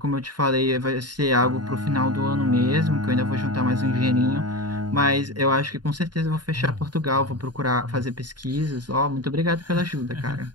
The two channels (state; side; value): late; left; 0.70 ms